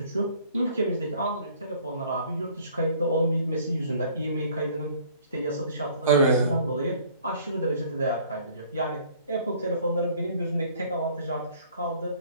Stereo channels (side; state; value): both; inverted; correlation -0.55